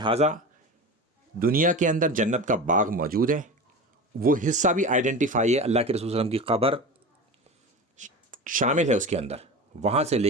دنیا کے اندر جنت کا باغ موجود ہے، وہ حصہ بھی آئیڈینٹیفائی ہے، اللہ کے رسول صلی اللہ علیہ وسلم کی قبر شامل ہے اس کے اندر، وہاں سے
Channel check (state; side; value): normal; both; correlation 0.29